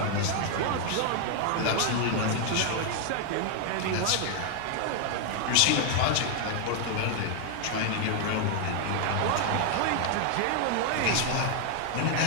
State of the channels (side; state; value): both; different; correlation 0.00